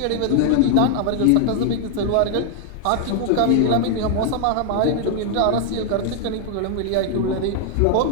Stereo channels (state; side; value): different; both; correlation 0.00